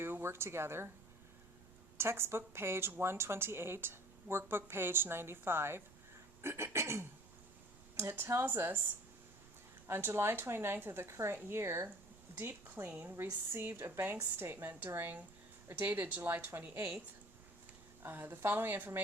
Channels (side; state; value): right; noise; rumble, 22 dB below the sound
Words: Work Together. Textbook page 128, workbook page 95. It tells us, on July 29th of the current year, Deep Clean received a bank statement dated July 28th. The following